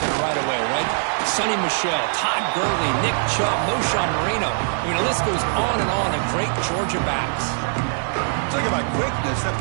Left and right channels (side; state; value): left; silent; digital silence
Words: right away, right? Sonny Michel, Todd Gurley, Nick Chubb, Moshawn Marino. I mean, the list goes on and on of great Georgia backs. Talking about quickness, that